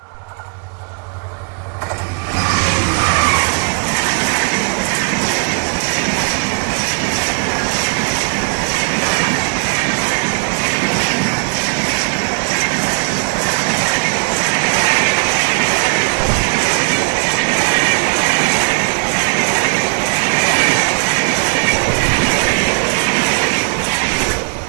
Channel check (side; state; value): left; quieter; 39.4 dB